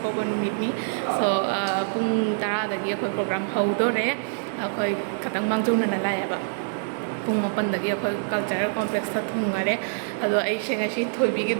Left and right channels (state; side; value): silent; left; digital silence